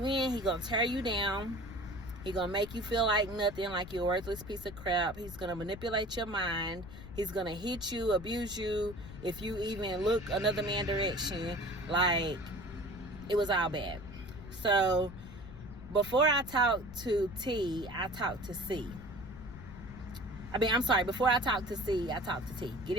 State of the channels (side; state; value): left; noise; rumble, 14 dB below the sound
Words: in, he gonna tear you down. He gonna make you feel like nothing, like you're a worthless piece of crap. He's gonna manipulate your mind. He's gonna hit you, abuse you if you even look another man's direction. Like, it was all bad. So before I talked to T, I talked to C. Before I talked to C, I talked to T. Get